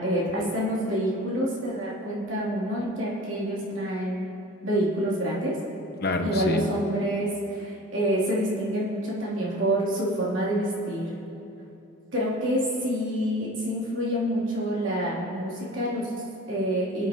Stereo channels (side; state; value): both; normal; correlation 0.40